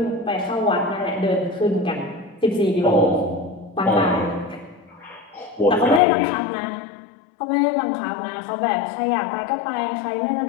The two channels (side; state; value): right; drops out; at 6.0 s